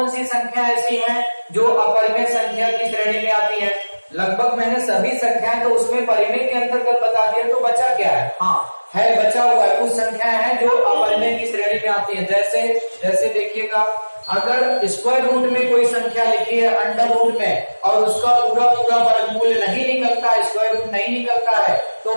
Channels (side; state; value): both; inverted; correlation -1.00